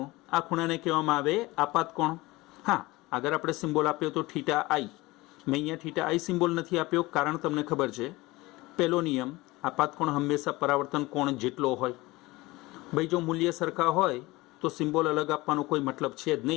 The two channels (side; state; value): right; quieter; 20.9 dB